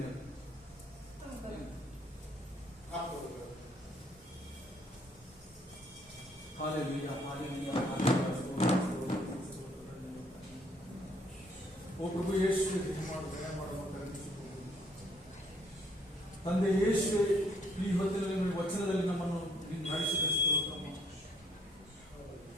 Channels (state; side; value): normal; both; correlation 0.65